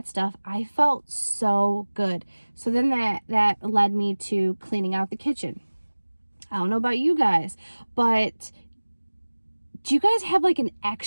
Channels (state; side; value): inverted; both; correlation -1.00